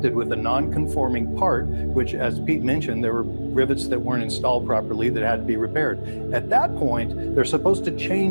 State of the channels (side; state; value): both; inverted; correlation -1.00